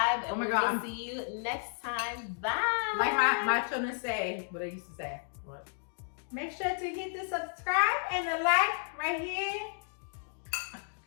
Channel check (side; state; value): right; silent; digital silence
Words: and Oh my we God, will see you next time. Bye. Like my children say, what they used to say. What? Make sure to hit the subscribe and the like right here.